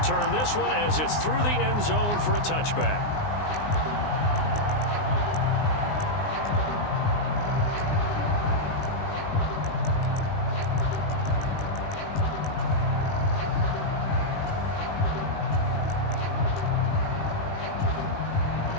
this one as it's through the end zone for a touchback.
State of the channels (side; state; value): right; late; 19 ms